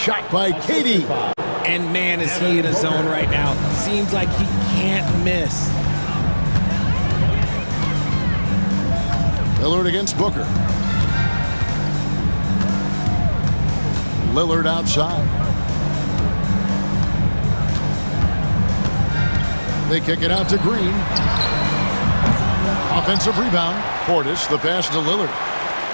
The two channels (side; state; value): both; inverted; correlation -1.00